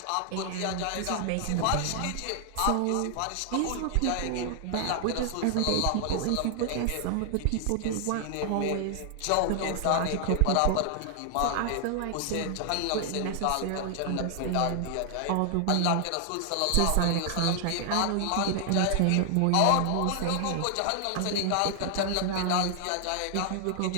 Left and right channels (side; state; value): both; different; correlation 0.00